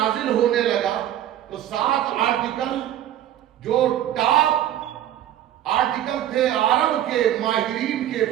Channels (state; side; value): quieter; left; 11.9 dB